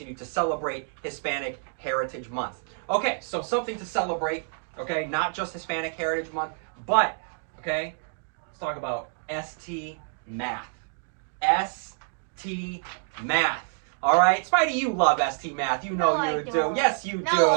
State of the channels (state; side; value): silent; left; 60 dB below the other